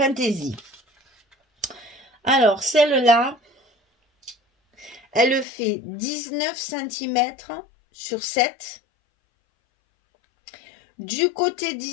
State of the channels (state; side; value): drops out; right; at 5.5 s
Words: Alors, celle-là, elle fait 19 cm sur 7. Du côté